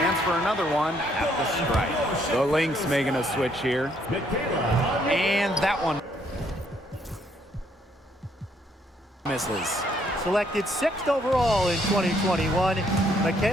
for another one at the stripe. The Lynx making a switch here. And that one misses. Selected 6th overall in 2021,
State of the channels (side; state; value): both; normal; correlation 0.69